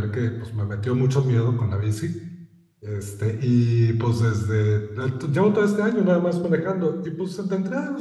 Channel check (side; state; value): both; identical; correlation 1.00